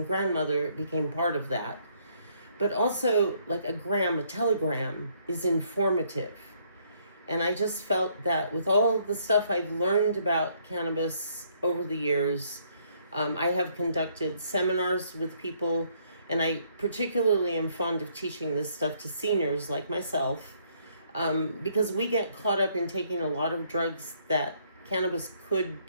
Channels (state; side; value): inverted; both; correlation -0.68